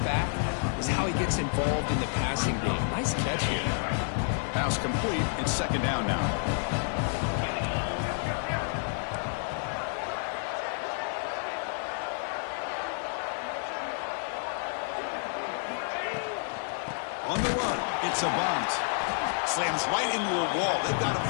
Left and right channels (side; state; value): right; silent; 58 dB below the other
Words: back is how he gets involved in the passing game. Nice catch here. Pass complete. It's second down now. On the run, it's a bunt. Slams right into a wall. They've got him